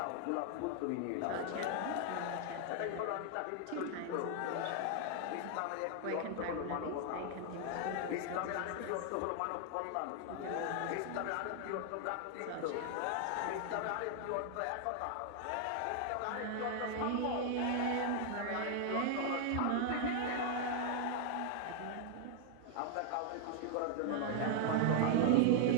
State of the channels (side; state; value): both; different; correlation 0.00